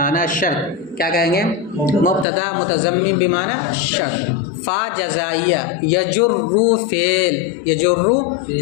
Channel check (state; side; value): drops out; right; at 2.2 s